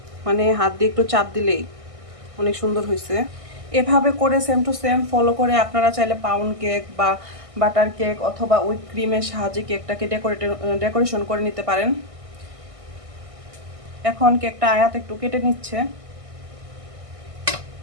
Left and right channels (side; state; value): left; late; 1.6 ms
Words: মানে হাত দিয়ে একটু চাপ দিলেই অনেক সুন্দর হয়েছে। এভাবে করে সেম টু সেম ফলো করে আপনারা চাইলে পাউন্ড কেক বা বাটার কেক অথবা উইপ ক্রিমের সাহায্যে কেকটাকে ডেকোরেশন করে নিতে পারেন। এখন কেকটা আয়াত একটু কেটে নিচ্ছে।